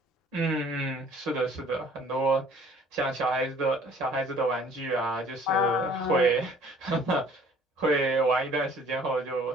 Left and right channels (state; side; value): normal; both; correlation 0.55